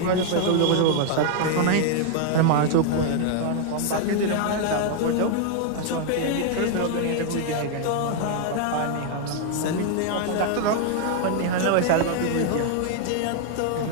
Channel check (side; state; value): both; different; correlation 0.00